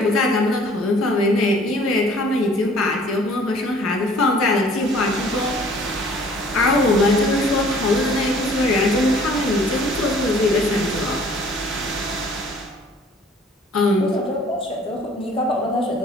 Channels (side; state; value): both; normal; correlation 0.54